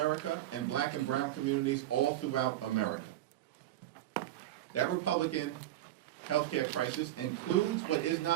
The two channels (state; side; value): quieter; left; 13.9 dB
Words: and black and brown communities all throughout America. That Republican healthcare crisis includes, but is